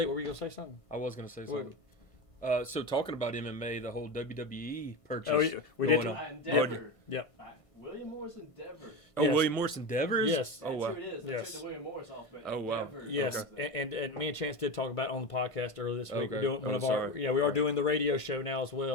What were you gonna say something? I was going to say something. So talking about MMA, the whole WWE purchase. Oh, we did. Endeavor. Yep. William Morris Endeavor. Oh, Yes. William Morris Endeavors? Yes. Oh, That's wow. who it is. They Yes. took the William Morris off. But Oh, wow. Endeavor. Yes, Okay. and me and Chance did talk about it on the podcast earlier this week. Okay. We're doing one Oh, of our sorry. we are doing the radio show now as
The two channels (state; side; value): late; right; 1.5 ms